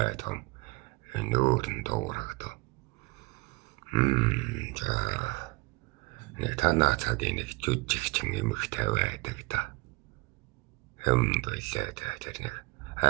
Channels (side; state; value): left; quieter; 24.4 dB